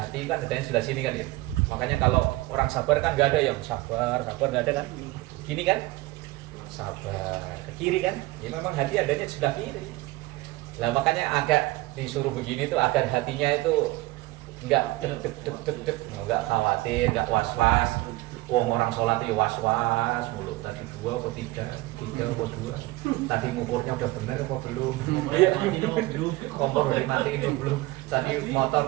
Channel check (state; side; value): quieter; left; 19.5 dB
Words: kan adanya sebelah sini kan ya. Makanya kalau orang sabar kan nggak ada yang sabar nggak ada kan. Gini kan? Sabar ke kiri kan, ya memang hati adanya sebelah kiri. Lah makanya agak disuruh begini tuh agar hatinya itu enggak deg, enggak khawatir, enggak was-was. Orang sholat itu was-was mulu, tadi 2 atau 3 atau 2, tadi ngukurnya udah bener apa belum, kompor udah dimatiin apa belum, tadi